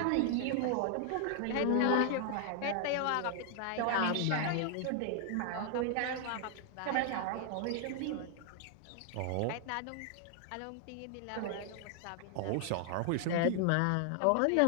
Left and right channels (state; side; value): different; both; correlation 0.00